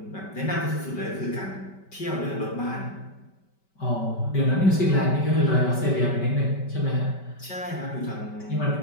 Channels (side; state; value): right; late; 5.2 ms